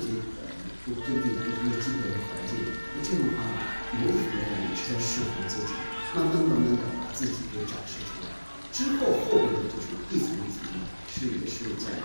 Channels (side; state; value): both; inverted; correlation -1.00